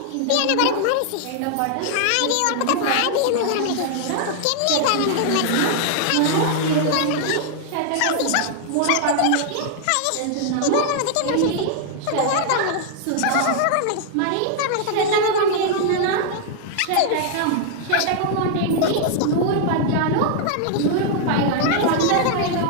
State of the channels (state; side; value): different; both; correlation -0.01